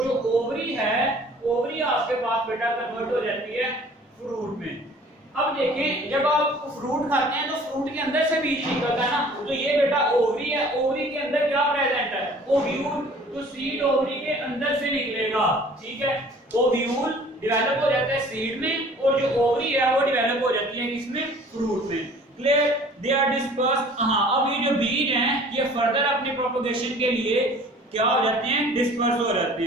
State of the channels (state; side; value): normal; both; correlation 0.50